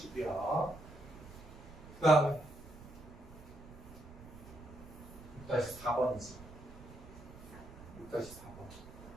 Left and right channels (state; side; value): noise; right; rumble, 16 dB below the sound